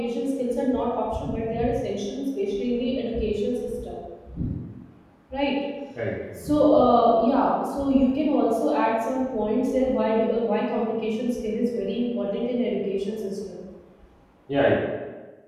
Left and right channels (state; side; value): identical; both; correlation 1.00